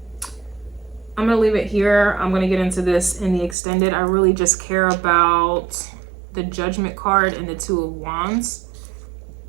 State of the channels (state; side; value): drops out; left; at 3.6 s